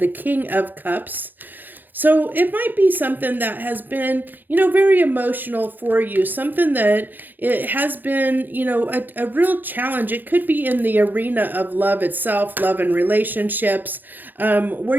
King of Cups. So it might be something that has been, you know, very emotional for you, something that it has been, you know, a real challenge. It could be in the arena of love itself, love and relationships, where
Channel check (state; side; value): late; left; 0.088 ms